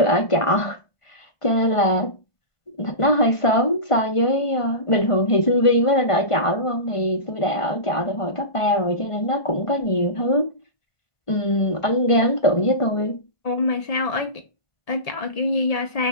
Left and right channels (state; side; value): late; right; 1.5 ms